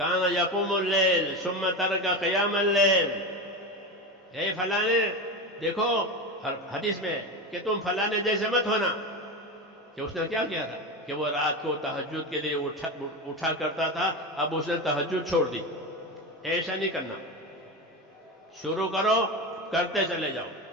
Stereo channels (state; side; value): normal; both; correlation 0.21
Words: یقوم اللیل ثم ترک قیام اللیل. اے فلانے دیکھو حدیث میں کہ تم فلانے جیسے مت ہونا. کہ اس نے کیا کیا تھا کہ وہ رات کو تہجد کے لیے اٹھا کرتا تھا، اب اس نے تہجد چھوڑ دی. ایسا نہیں کرنا. شروع کرو، کرتے چلے جاؤ